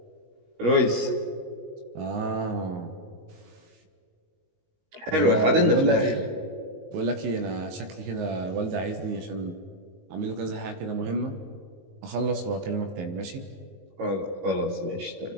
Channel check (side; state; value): left; late; 19 ms